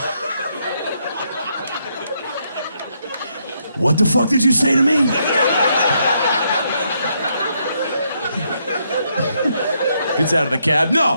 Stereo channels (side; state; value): both; inverted; correlation -0.76